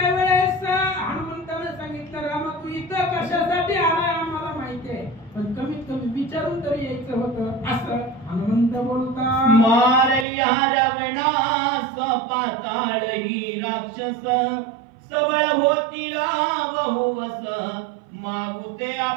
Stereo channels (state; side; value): drops out; left; at 10.2 s